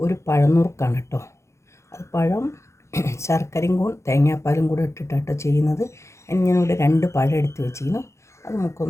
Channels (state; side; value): late; right; 0.14 ms